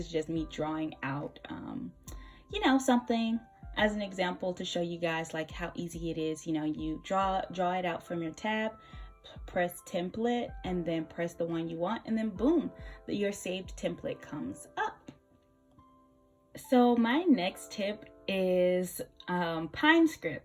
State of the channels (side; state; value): both; identical; correlation 1.00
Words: just me drawing out, you know, something as an example to show you guys like how easy it is. You know, you draw it out from your tab, press template, and then press the one you want, and then boom, your saved template comes up. So my next tip is Pine